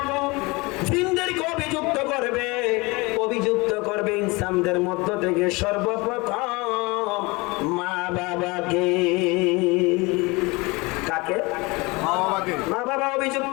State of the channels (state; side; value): quieter; right; 25.0 dB